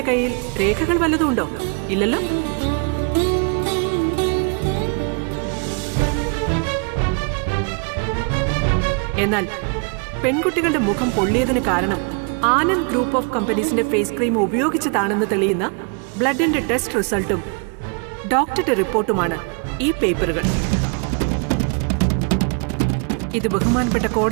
കയ്യിൽ രേഖകൾ വല്ലതും ഉണ്ടോ? ഇല്ലല്ലോ. എന്നാൽ പെൺകുട്ടികളുടെ മുഖം പൊള്ളിയതിന് കാരണം ആനന്ദ് ഗ്രൂപ്പ് ഓഫ് കമ്പനീസിന്റെ ഫേസ് ക്രീം ഉപയോഗിച്ചതാണെന്ന് തെളിയുന്ന ബ്ലഡിന്റെ ടെസ്റ്റ് റിസൾട്ടും ഡോക്ടറുടെ റിപ്പോർട്ടുമാണ് ഈ പേപ്പറുകൾ. ഇത് ബഹുമാനപ്പെട്ട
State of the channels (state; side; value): quieter; left; 37.0 dB